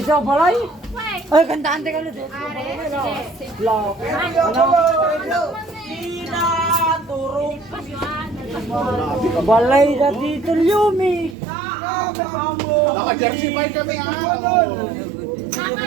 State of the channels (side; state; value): left; drops out; at 11.4 s